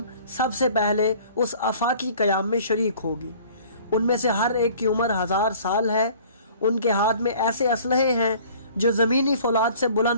सबसे पहले उस आफाकी क़याम में शरीक होगी। उनमें से हर एक की उम्र 1000 साल है। उनके हाथ में ऐसे असलहे हैं जो ज़मीनी फौलाद से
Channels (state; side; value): inverted; both; correlation -0.50